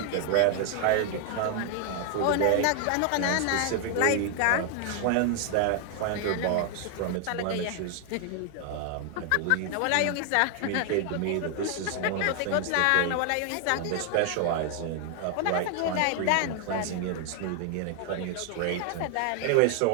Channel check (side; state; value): both; different; correlation 0.00